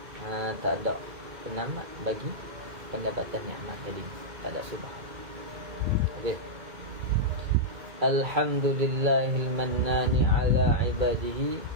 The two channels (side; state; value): left; late; 2.2 ms